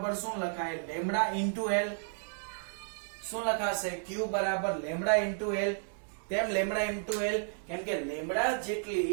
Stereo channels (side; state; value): left; silent; digital silence